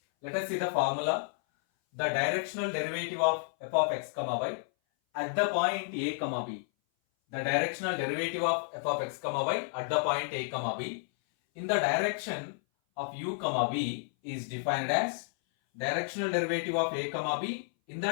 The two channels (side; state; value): right; silent; 57 dB below the other